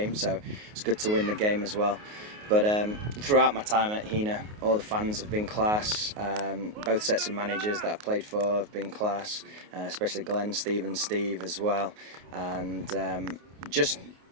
so it's good to win the game as well. But throughout my time at Heanor, all the fans have been class. Both sets of managers that I've played for have been class, especially Glenn, Steve and Steve as well. And just,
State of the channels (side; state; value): left; late; 28 ms